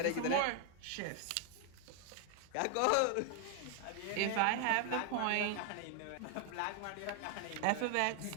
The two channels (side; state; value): both; different; correlation 0.00